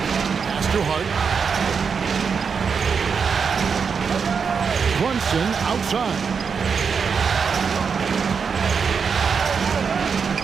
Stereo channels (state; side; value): quieter; left; 6.0 dB